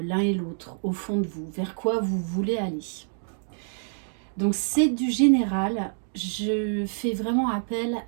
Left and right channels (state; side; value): silent; left; digital silence